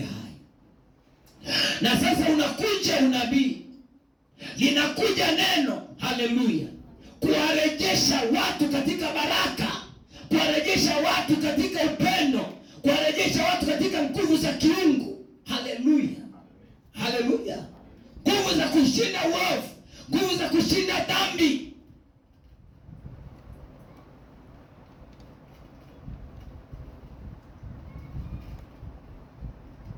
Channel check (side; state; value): both; identical; correlation 1.00